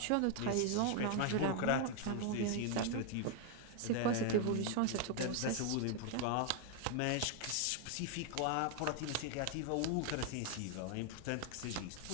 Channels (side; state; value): both; different; correlation 0.01